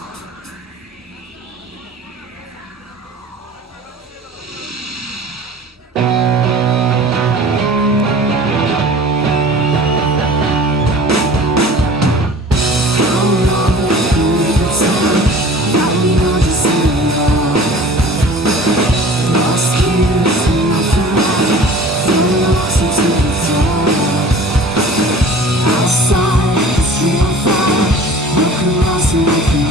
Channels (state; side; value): normal; both; correlation 0.44